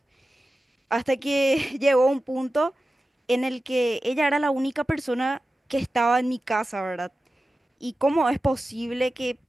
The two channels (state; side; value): normal; both; correlation 0.94